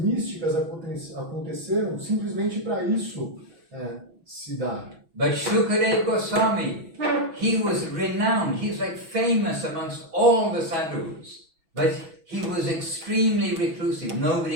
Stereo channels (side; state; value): left; late; 6.1 ms